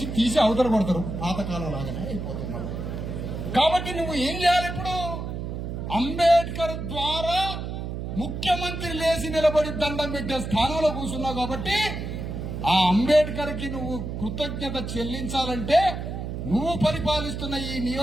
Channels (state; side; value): noise; right; hum, 5 dB below the sound